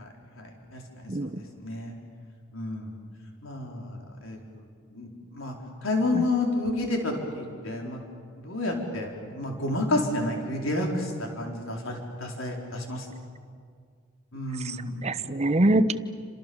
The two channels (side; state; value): both; normal; correlation 0.52